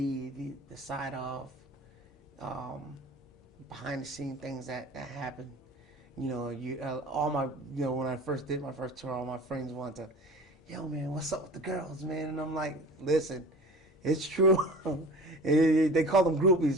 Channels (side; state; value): both; normal; correlation 0.39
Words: the side of behind the scene things that happen. You know, all my, you know, when I first did my first tour, all my friends wanted to, "Yo, man, what's up with the girls, man?" And I'm like, "Listen, it's true." They call them